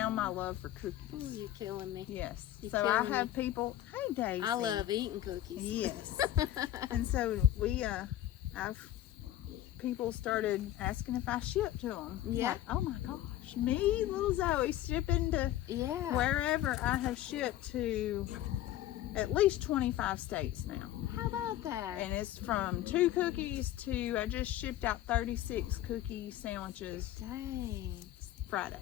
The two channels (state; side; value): quieter; right; 13.4 dB